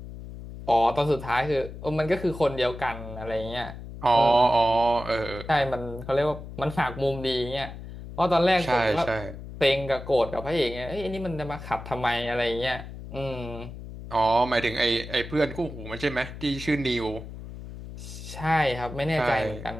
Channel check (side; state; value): left; noise; hum, 12 dB below the sound